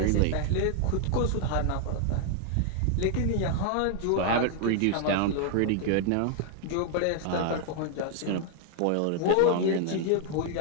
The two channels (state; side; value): different; both; correlation 0.00